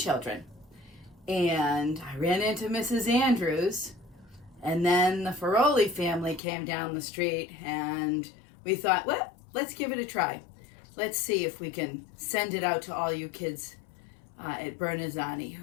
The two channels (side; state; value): right; drops out; at 6.4 s